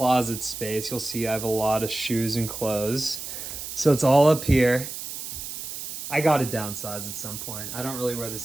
space. You'll see I have a lot of shoes and clothes. So it's all up here. I got to downsize at some point. I don't really wear the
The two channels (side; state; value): right; noise; hiss, 8 dB below the sound